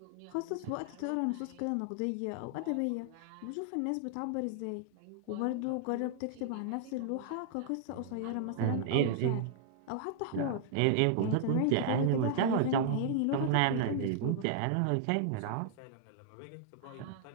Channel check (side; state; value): both; different; correlation -0.01